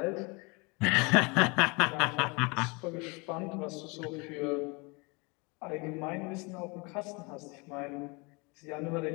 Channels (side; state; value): right; quieter; 28.8 dB